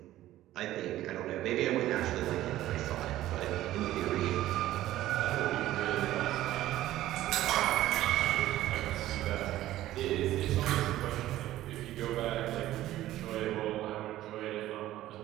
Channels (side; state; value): left; quieter; 14.5 dB